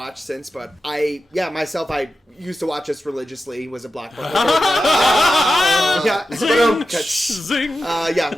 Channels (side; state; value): both; normal; correlation 0.91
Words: since, but I used to watch this religiously, was a Blockbuster. Zing!